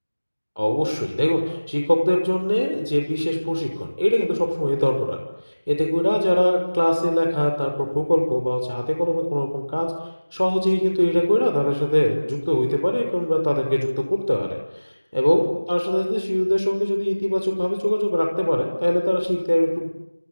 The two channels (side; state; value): both; inverted; correlation -1.00